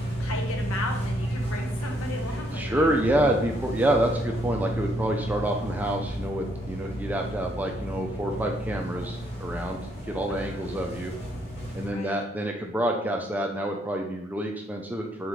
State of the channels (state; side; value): normal; both; correlation 0.72